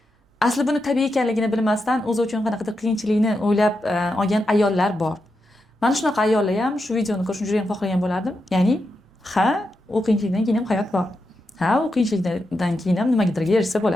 Asli buni tabiiy ekanligini bilmasdan o'zi uchun qanaqadir qiyinchilikni o'ylab olgan ayollar bor. Mana shunaqa ayollar ham shu videoni ko'rishni juda ham xohlagan bo'lardim. Ya'ni, ha, u qiyinchilikdan keyin ham hayot bor. Ha, u qiyinchilikdan keyin ham nimagadir erishsa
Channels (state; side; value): normal; both; correlation 0.86